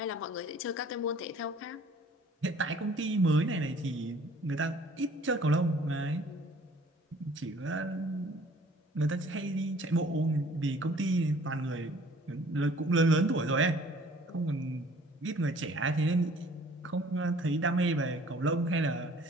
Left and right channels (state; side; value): normal; both; correlation 0.53